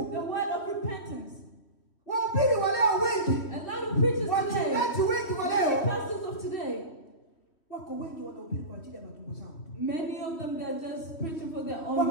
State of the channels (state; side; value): late; right; 3.1 ms